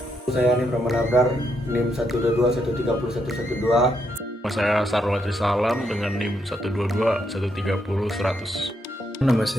Saya Nim Ramanabrar, NIM 122130112. Saya Sarwati Salam dengan NIM 122130100. Nama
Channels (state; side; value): normal; both; correlation 0.78